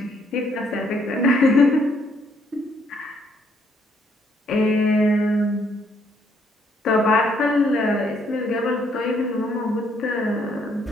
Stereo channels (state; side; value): normal; both; correlation 0.69